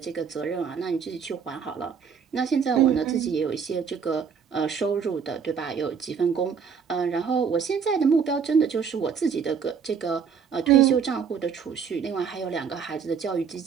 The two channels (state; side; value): quieter; left; 6.5 dB